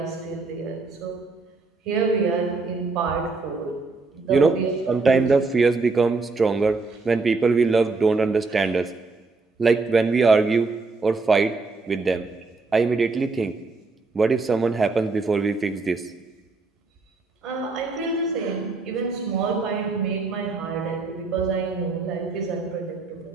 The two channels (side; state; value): left; quieter; 3.9 dB